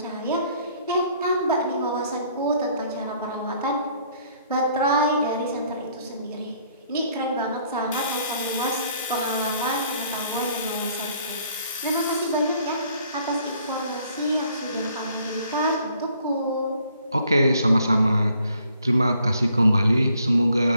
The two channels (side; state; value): both; inverted; correlation -0.63